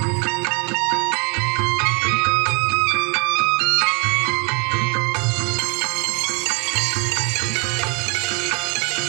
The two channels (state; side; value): quieter; left; 34.0 dB